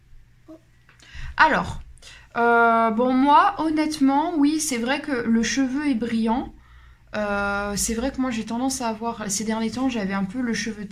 Oh. Alors, bon, moi, honnêtement, oui, c'est vrai que le cheveu est brillant. C'est vrai que moi, j'ai tendance à avoir... Ces derniers temps, j'avais un peu le cheveu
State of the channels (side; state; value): both; identical; correlation 1.00